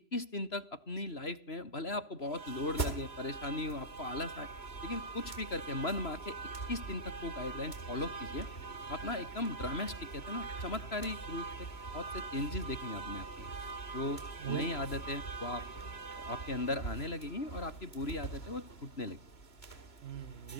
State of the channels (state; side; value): late; right; 3.0 ms